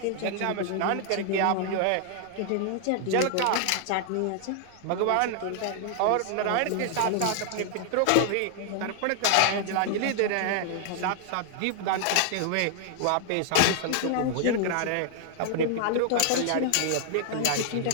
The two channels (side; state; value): both; different; correlation 0.00